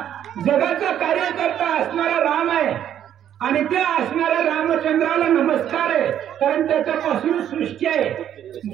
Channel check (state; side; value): quieter; left; 10.3 dB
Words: जगाचा कार्यकर्ता असणारा राम आहे आणि त्या असणाऱ्या रामचंद्राला नमस्कार आहे कारण त्याच्यापासून सृष्टी आहे